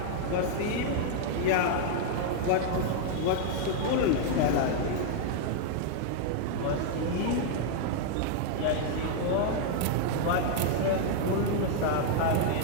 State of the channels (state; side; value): different; both; correlation -0.01